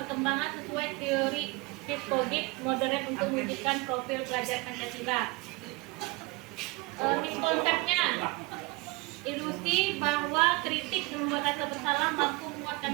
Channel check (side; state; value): left; quieter; 24.4 dB